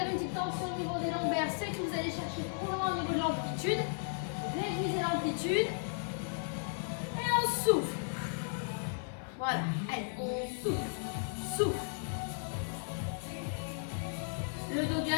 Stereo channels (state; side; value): silent; right; digital silence